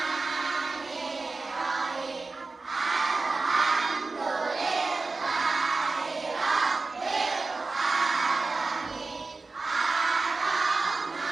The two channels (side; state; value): left; quieter; 3.8 dB